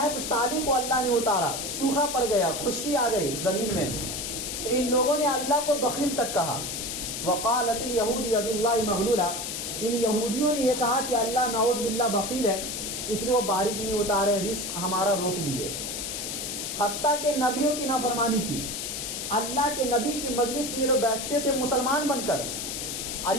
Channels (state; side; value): noise; left; hiss, 5 dB below the sound